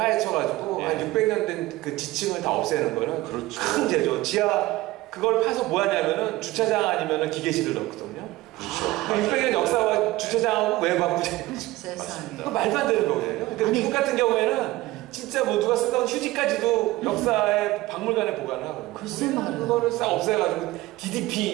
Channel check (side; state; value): left; quieter; 18.3 dB